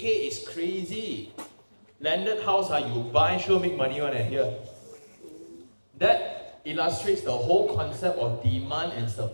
is crazy. Landed house, you buy, sure make money on it here. That illustrates the whole concept of demand and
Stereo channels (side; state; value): both; inverted; correlation -1.00